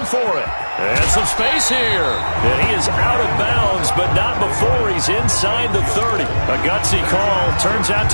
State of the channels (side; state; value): both; inverted; correlation -1.00